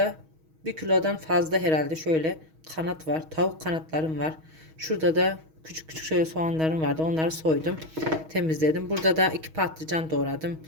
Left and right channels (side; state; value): left; late; 6.3 ms